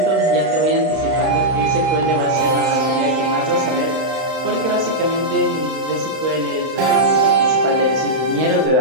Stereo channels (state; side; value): late; left; 31 ms